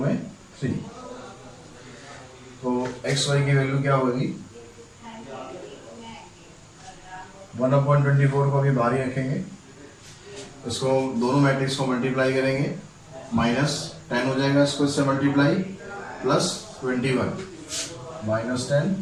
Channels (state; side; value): identical; both; correlation 1.00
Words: 3। तो एक्स वाई की वैल्यू क्या होगी, 1/24 को भी बाहर ही रखेंगे। इसको दोनों मैट्रिक्स को मल्टीप्लाई करेंगे, -10 हो जाएगा इसको इससे मल्टीप्लाई, प्लस 21, -10